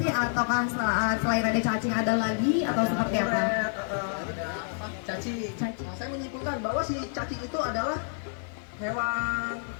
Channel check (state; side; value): silent; right; 59 dB below the other